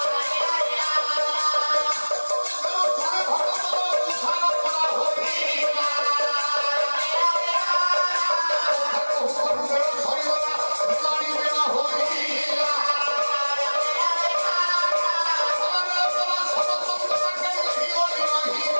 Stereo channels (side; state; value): both; inverted; correlation -1.00